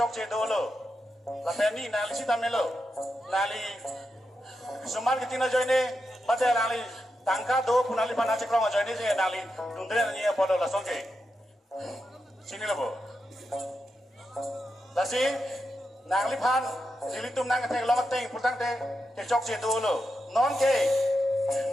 cedo lo. Lapen ni nali si tamelo. Nali suman ketina join ni, pada nali tangka do punali pana cekrong join ni je nali tundre ni apa lo lasong ke. Sini lo bo. Lasi nali pan jilitum nang ketek lo keteng putang te kecok cedo lo. Non ke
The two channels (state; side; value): normal; both; correlation 0.87